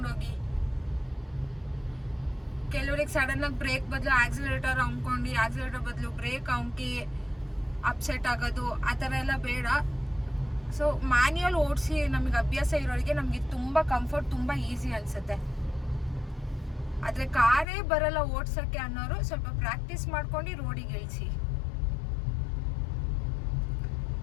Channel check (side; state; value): right; drops out; at 17.7 s